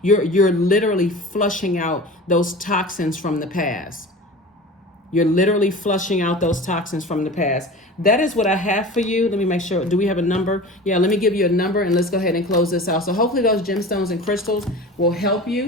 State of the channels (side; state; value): both; normal; correlation 0.35